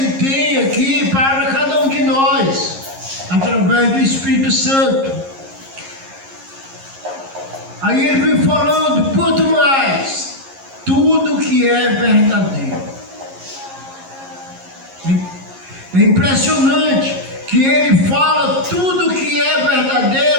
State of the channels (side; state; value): left; late; 11 ms